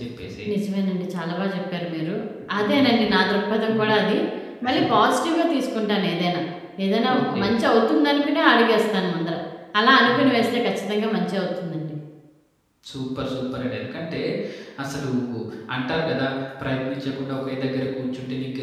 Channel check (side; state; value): both; identical; correlation 1.00